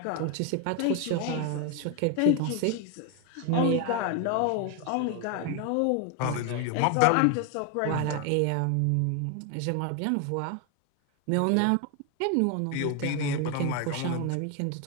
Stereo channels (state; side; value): different; both; correlation 0.01